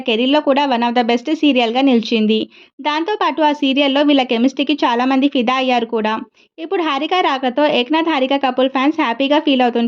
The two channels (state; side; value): identical; both; correlation 1.00